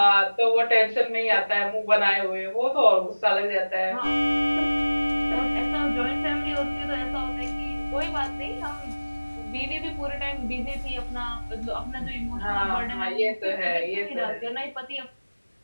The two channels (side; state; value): both; inverted; correlation -1.00